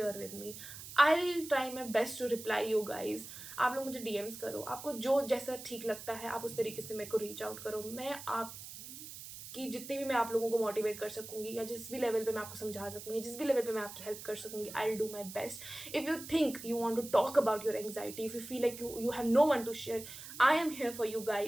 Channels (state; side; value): noise; right; hiss, 12 dB below the sound